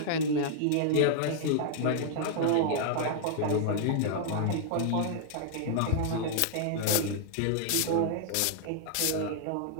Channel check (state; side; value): different; both; correlation -0.01